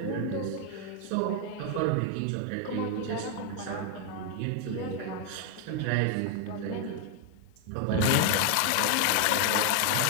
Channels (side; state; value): both; different; correlation 0.00